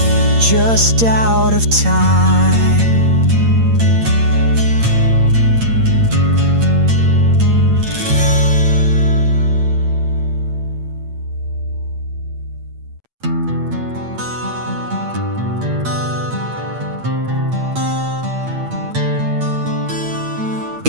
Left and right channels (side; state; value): left; late; 8.7 ms